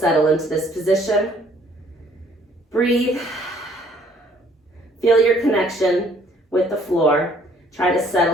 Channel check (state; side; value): normal; both; correlation 0.61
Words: into this position. Breathe. Feel your connection with the floor. Try to